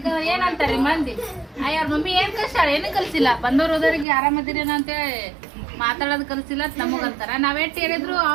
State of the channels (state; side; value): drops out; left; at 4.0 s